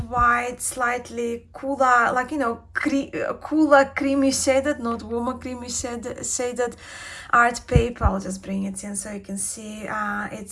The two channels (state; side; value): identical; both; correlation 1.00